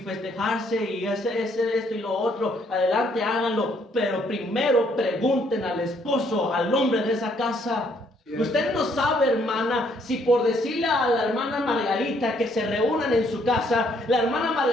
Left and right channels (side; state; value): both; normal; correlation 0.68